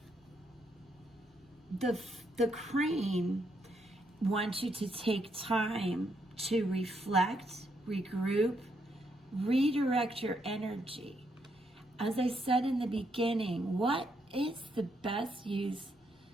crane wants you to take time to reflect, regroup, redirect your energy. As I said in the beginning, what is the best use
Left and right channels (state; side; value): normal; both; correlation 0.76